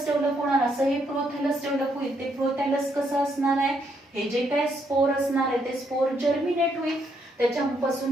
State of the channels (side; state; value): both; normal; correlation 0.74